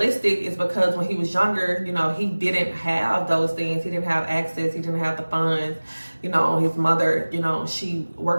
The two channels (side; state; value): both; inverted; correlation -1.00